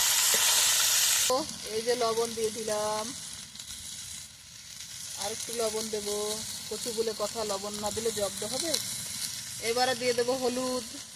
এই যে লবণ দিয়ে দিলাম, আর একটু লবণ দেবো। কচু বলে কথা, লবণ না দিলে জব্দ হবে। এবারে দিয়ে দেবো হলুদ।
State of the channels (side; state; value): both; identical; correlation 1.00